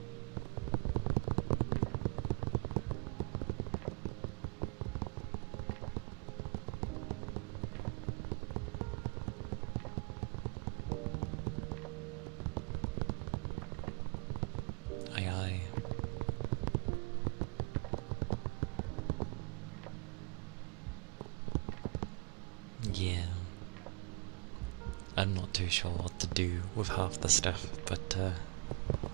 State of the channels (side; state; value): left; quieter; 33.4 dB